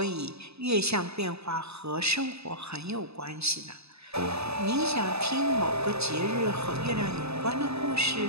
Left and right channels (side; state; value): left; late; 0.79 ms